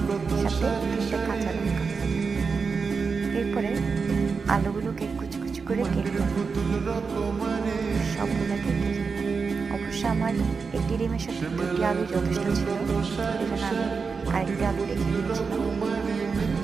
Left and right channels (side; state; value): left; quieter; 5.1 dB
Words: সাথে 3টে কাঁচা লঙ্কা। এরপরে আলুগুলোকে কুচি কুচি করে কেটে সবগুলো কেটে অবশ্য আমার 1টি ডিমের সাথে 2টি আলু যথেষ্ট ছিল, এই জন্য আমি আরেকটি আলু রেখে দিয়েছিলাম।